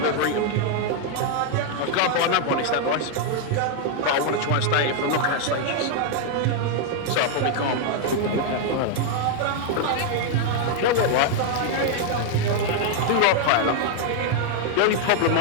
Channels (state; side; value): different; both; correlation 0.00